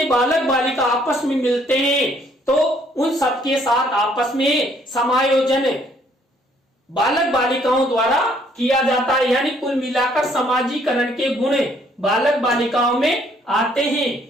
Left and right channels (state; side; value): normal; both; correlation 0.65